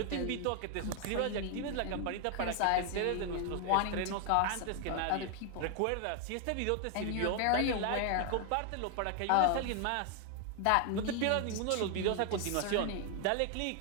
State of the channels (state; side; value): different; both; correlation 0.00